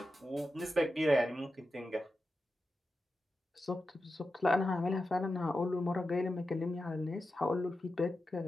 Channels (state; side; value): normal; both; correlation 0.91